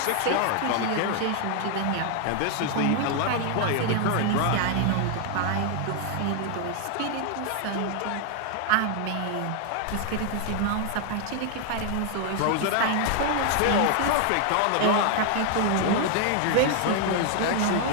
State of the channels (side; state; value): both; different; correlation 0.00